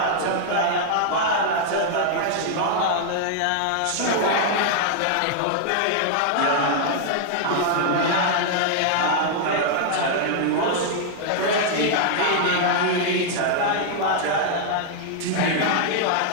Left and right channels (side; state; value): both; different; correlation -0.01